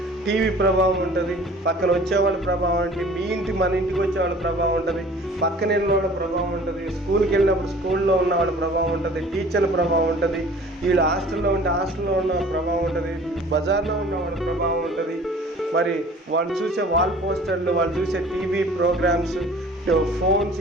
టీవీ ప్రభావం ఉంటుంది, పక్కన వచ్చేవాళ్ళ ప్రభావం ఉంటుంది, మన ఇంటికి వచ్చేవాళ్ళ ప్రభావం ఉంటుంది, పక్కన వెళ్ళిన వాళ్ళ ప్రభావం ఉంటుంది, స్కూల్కి వెళ్ళినప్పుడు స్కూల్లో ఉన్న వాళ్ళ ప్రభావం ఉంటుంది, టీచర్ల ప్రభావం ఉంటుంది, వీళ్ళు హాస్టల్లో ఉంటే హాస్టల్లో ఉన్న ప్రభావం ఉంటుంది, బజార్లో ఉన్న వాళ్ళ ప్రభావం ఉంటుంది, మరి వాళ్ళు చూసే వాల్ పోస్టర్లు, వాళ్ళు చూసే టీవీ ప్రోగ్రామ్స్, ఫోన్స్,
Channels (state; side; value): normal; both; correlation 0.47